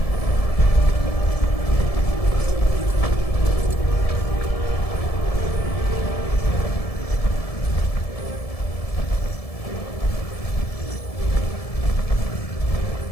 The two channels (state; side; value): late; right; 1.7 ms